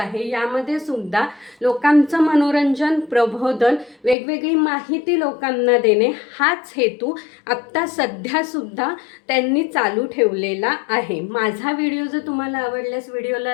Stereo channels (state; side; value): drops out; right; at 4.2 s